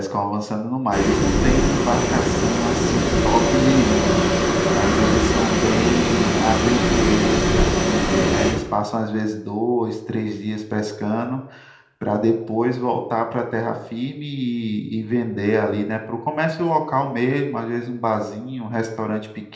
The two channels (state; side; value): identical; both; correlation 1.00